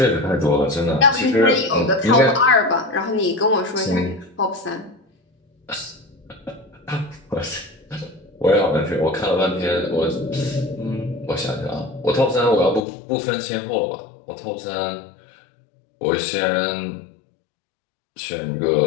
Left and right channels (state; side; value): drops out; right; at 12.9 s